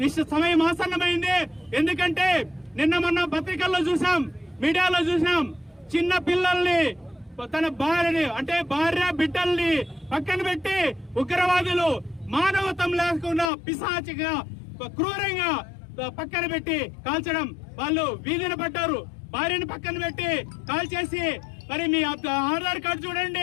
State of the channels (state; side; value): drops out; right; at 13.5 s